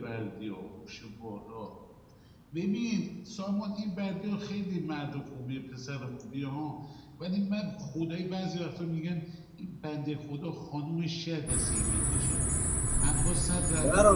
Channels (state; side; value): identical; both; correlation 1.00